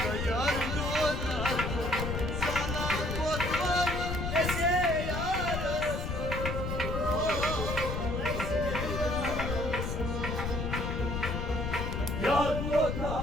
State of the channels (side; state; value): left; noise; rumble, 2 dB below the sound